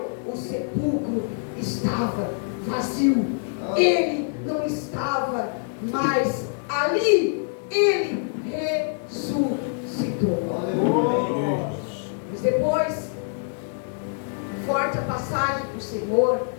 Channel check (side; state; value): right; silent; 62 dB below the other